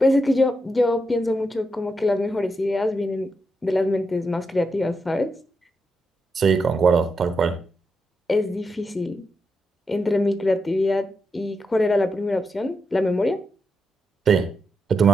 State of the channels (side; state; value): both; normal; correlation 0.84